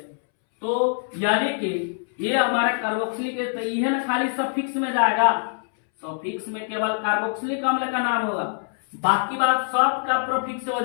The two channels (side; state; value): right; silent; 63 dB below the other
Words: तो यानी कि ये हमारा कार्बोक्सिलिक है तो ये ना खाली सफिक्स में जाएगा, सफिक्स में केवल कार्बोक्सिलिक अम्ल का नाम होगा, बाकी बात सब का प्रीफिक्स से हो